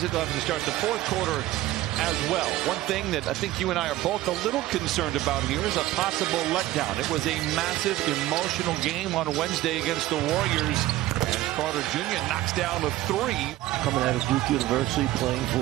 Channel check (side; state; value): left; quieter; 15.7 dB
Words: it. They'll have to start the fourth quarter as well. One thing that I think you and I are both a little concerned about here is a possible letdown. It was a massive emotional game on Wednesday against the Warriors. And Carter Jr. knocks down a three. Coming out of Duke University, playing